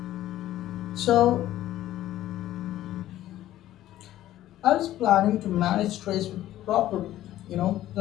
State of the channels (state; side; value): quieter; right; 13.8 dB